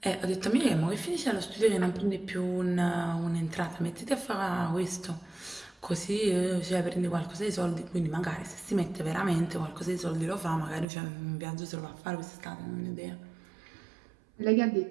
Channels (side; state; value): left; drops out; at 10.9 s